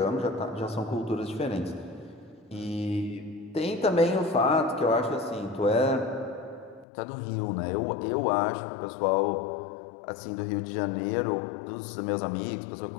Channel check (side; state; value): right; drops out; at 6.9 s